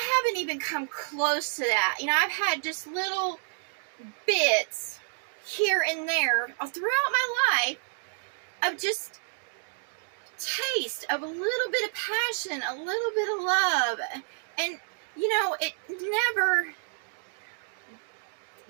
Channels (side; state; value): left; silent; 58 dB below the other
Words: haven't even come close to that. You know, I've had just little bits here and there throughout my life of just taste of a little bit of passion, a little bit of love. And, you know, it never